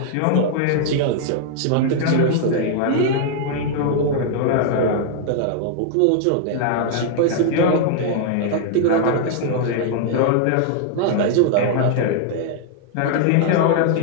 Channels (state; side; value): different; both; correlation 0.00